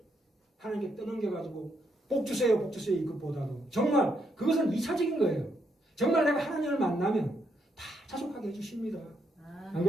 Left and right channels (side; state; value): both; normal; correlation 0.77